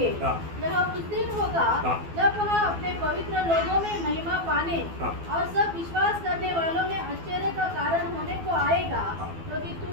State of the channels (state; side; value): late; left; 12 ms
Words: हाँ. यह उस दिन होगा हाँ. जब वह अपने पवित्र लोगों में महिमा पाने हाँ. और सब विश्वास करने वालों में आश्चर्य का कारण होने को आएगा, क्योंकि